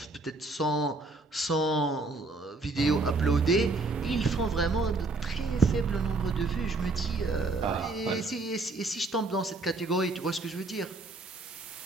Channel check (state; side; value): quieter; left; 3.2 dB